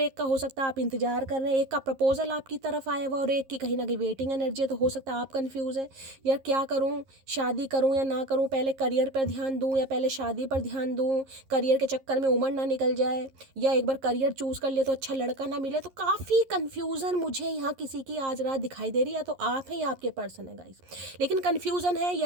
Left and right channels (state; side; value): late; left; 11 ms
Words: एक का हो सकता है आप इंतजार कर रहे हैं, एक का प्रपोजल आपकी तरफ आया हुआ और एक की कहीं ना कहीं वेटिंग एनर्जी है। तो हो सकता है आप कन्फ्यूज है, यार क्या करूँ, शादी करूँ या ना करूँ, पहले करियर पर ध्यान दूँ या पहले शादी पर ध्यान दूँ, करियर के चक्कर में उम्र ना निकल जाए, या एक बार करियर चूज कर ले तो अच्छा लड़का ना मिले। तो काफ़ी कंफ्यूजन मुझे यहाँ किसी की आज रात दिखाई दे रही है, या तो आप हैं या आपके पर्सन है गाइस। लेकिन कंफ्यूजन है,